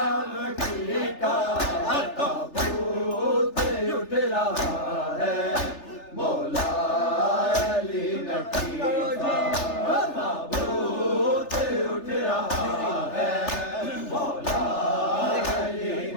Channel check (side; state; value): right; late; 3.4 ms